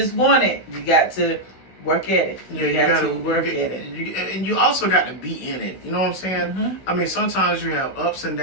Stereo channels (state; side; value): late; right; 16 ms